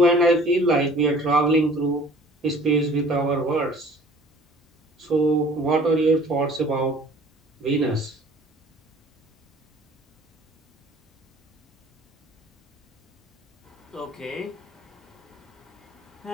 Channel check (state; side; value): normal; both; correlation 0.50